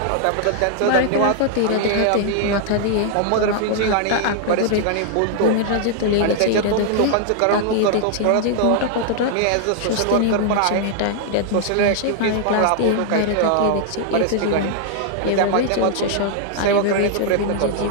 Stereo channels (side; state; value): both; different; correlation -0.01